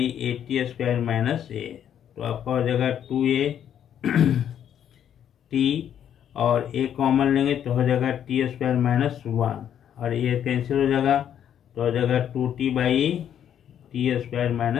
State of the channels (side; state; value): right; quieter; 9.6 dB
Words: 80 square minus A, तो आपका हो जाएगा 2a टी और ए कॉमन लेंगे तो हो जाएगा टी स्क्वायर माइनस 1 और ये कैंसिल हो जाएगा, तो हो जाएगा 2t by T square